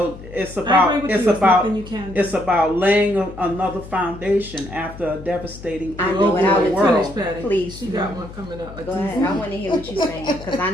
I agree about with it's you. There's about nothing you can do. it's about laying another foundation after a devastating I know what I would do. world. Finish, Patty. Please. She got one coming up. Go ahead. I want to hear what you're saying because I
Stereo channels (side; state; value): left; noise; hum, 15 dB below the sound